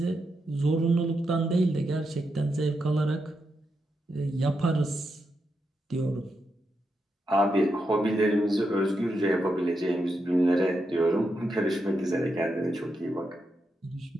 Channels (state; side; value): normal; both; correlation 0.84